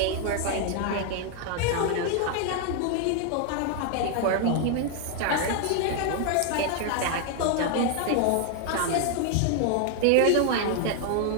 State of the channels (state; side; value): different; both; correlation 0.00